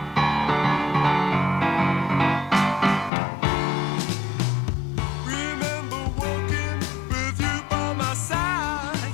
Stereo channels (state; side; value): drops out; right; at 3.1 s